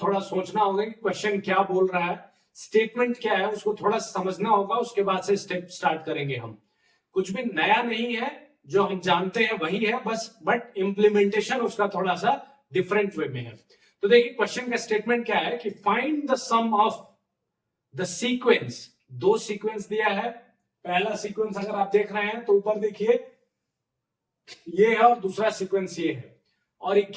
सोचना होगा कि क्वेश्चन क्या बोल रहा है, स्टेटमेंट क्या है, उसको थोड़ा समझना होगा। उसके बाद से स्टेप स्टार्ट करेंगे। हम कुछ भी नया नहीं है, जो हम जानते हैं वही है बस, बट इंप्लीमेंटेशन उसका थोड़ा सा डिफरेंट वे में है। तो देखिए क्वेश्चन का स्टेटमेंट क्या है कि find the sum of the sequence. दो सीक्वेंस दिया है। पहला सीक्वेंस अगर आप देख रहे हैं तो ऊपर देखिए ये है, और दूसरा सीक्वेंस ये है, और ये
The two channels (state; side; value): identical; both; correlation 1.00